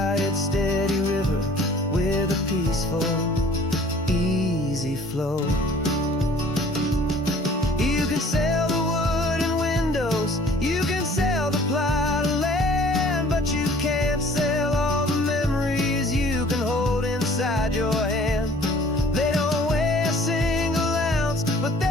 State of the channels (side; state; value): both; normal; correlation 0.53